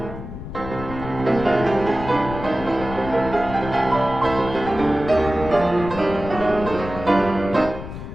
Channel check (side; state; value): left; noise; rumble, 10 dB below the sound